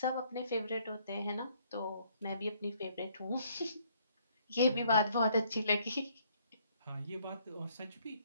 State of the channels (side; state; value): both; inverted; correlation -0.65